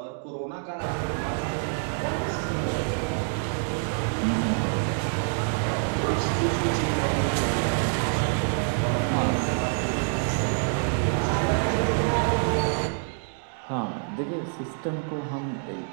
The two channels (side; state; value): left; silent; 58 dB below the other